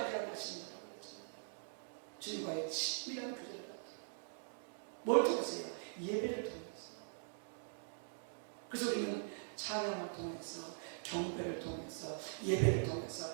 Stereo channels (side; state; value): left; silent; digital silence